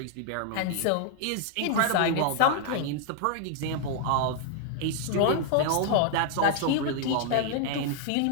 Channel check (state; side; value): different; both; correlation -0.01